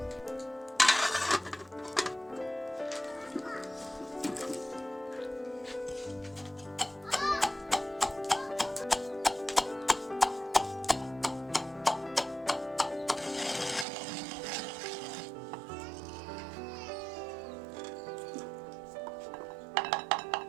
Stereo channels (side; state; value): left; drops out; at 13.9 s